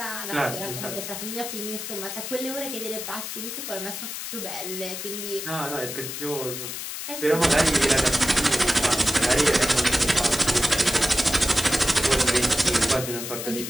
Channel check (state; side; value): noise; left; hiss, 7 dB below the sound